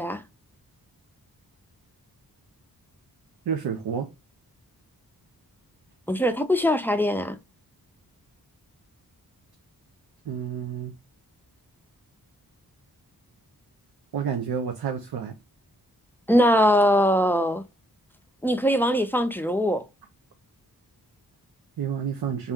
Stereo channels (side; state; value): both; normal; correlation 0.68